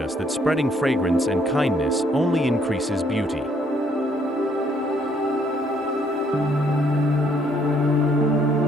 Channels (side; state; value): both; normal; correlation 0.67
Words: that spreading fragrance and kindness only increases beauty.